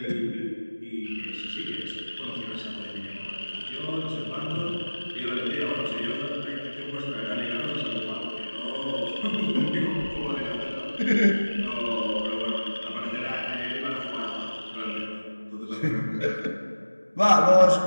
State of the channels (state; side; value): inverted; both; correlation -1.00